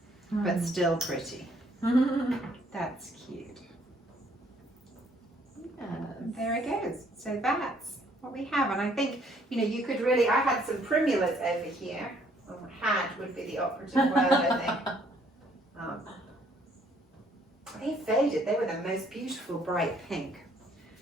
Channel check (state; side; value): normal; both; correlation 0.64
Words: but still pretty. That's cute. Yes. There it goes. So that's what we have. And I think, you know, you could really, I had some primulas over here. Or had would be the operative word, I think. They faded. They were the most beautiful bright pink.